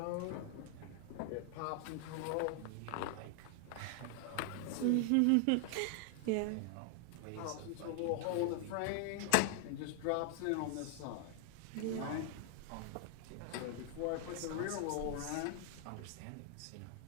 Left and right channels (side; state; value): both; different; correlation 0.00